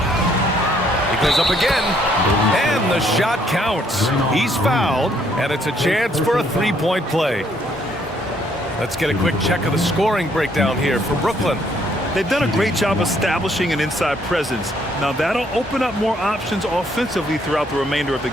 He goes up again, and the shot counts. He's fouled, and it's a chance for a three-point play. Let's get a quick check of the scoring breakdown here for Brooklyn. They've done a great job establishing an inside presence. Now that'll open up more options offensively throughout the remainder of the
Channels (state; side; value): normal; both; correlation 0.68